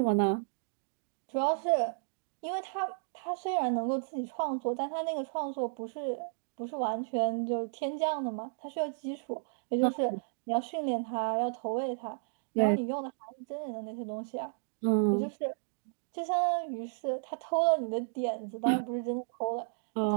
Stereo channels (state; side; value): silent; left; digital silence